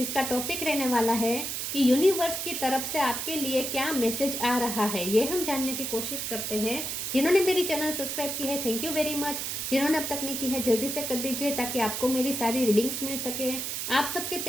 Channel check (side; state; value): right; noise; hiss, 3 dB below the sound